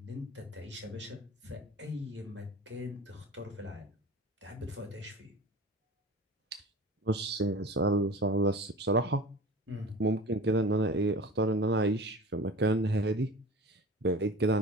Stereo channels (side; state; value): both; normal; correlation 0.38